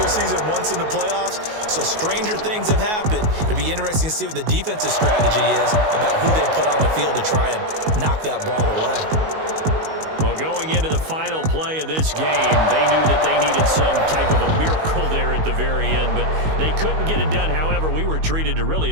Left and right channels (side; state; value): left; late; 19 ms